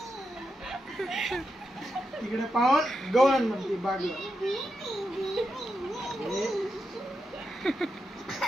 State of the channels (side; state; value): both; normal; correlation 0.86